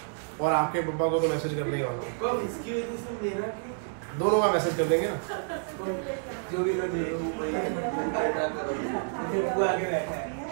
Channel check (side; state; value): left; silent; digital silence